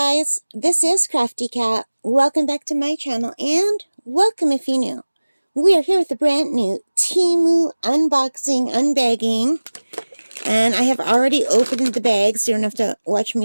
this is Crafty Cat. Welcome back to my channel and welcome if you're new. We are here with a brand new Temu unboxing, unbagging, and I have already opened the bag so you don't have to watch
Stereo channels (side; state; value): both; inverted; correlation -1.00